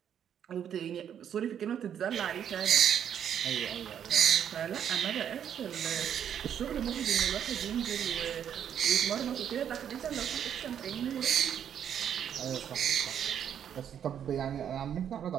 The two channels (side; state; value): left; quieter; 9.0 dB